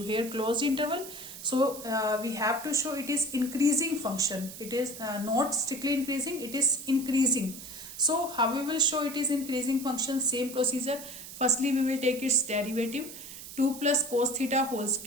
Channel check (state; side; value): noise; right; hiss, 13 dB below the sound